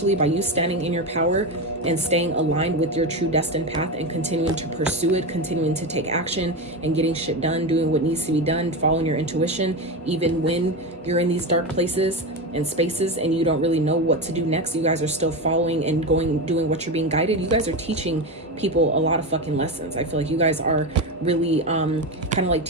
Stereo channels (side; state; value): both; normal; correlation 0.18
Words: by you standing in your power and staying aligned with your true destined path and continuing to pursue it, continuing to take action and getting shit done, doing what needs to be done, following your intuition, even when you're in these dark places and spaces and you don't really know what to do next, you guys are still following and doing what you're being guided. You guys are teaching people a lot of fucking lessons. I feel like you guys are really kind of like